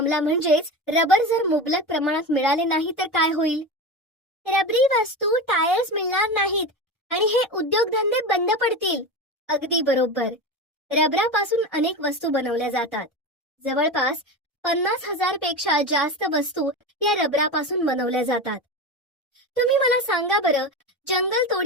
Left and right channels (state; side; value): normal; both; correlation 0.24